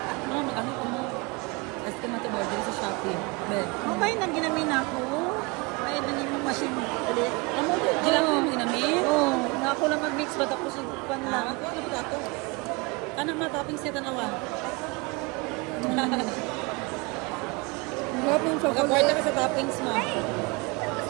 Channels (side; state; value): left; quieter; 27.3 dB